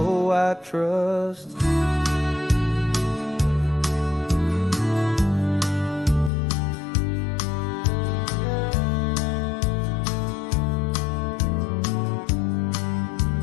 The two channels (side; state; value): right; drops out; at 6.3 s